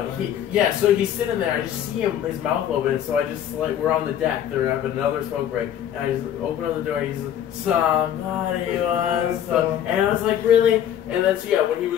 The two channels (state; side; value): quieter; right; 10.2 dB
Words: he's sitting there. I just see him, his mouth open. So I just like we're on the deck. They're having another smoke break, and I just open up the door. And he's like, somebody wants some, and I was like, really? And then when he